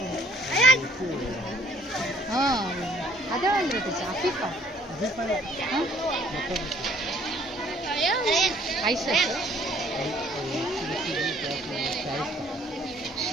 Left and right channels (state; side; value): normal; both; correlation 0.59